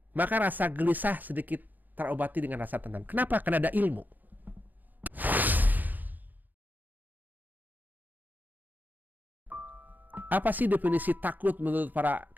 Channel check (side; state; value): left; late; 0.085 ms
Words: maka rasa gelisah sedikit terobati dengan rasa tenang. Kenapa? Karena ada ilmu. Apa sih definisi takut menurut para